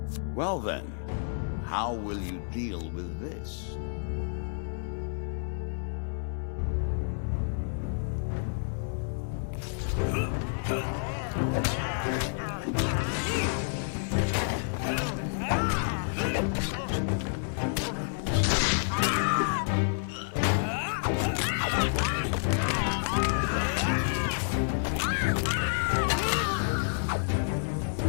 Well then, how will you deal with this?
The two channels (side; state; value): right; silent; 58 dB below the other